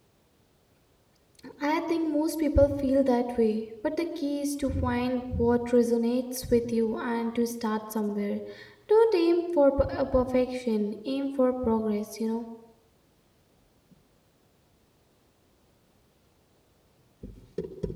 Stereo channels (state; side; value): identical; both; correlation 1.00